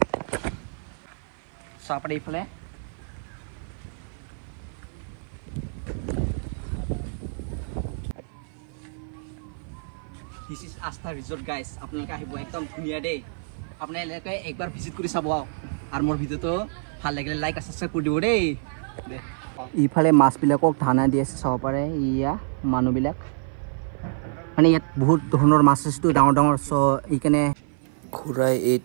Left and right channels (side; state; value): left; silent; 55 dB below the other